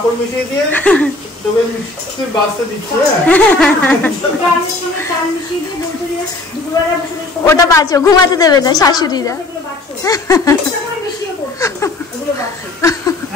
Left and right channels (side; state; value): right; quieter; 3.0 dB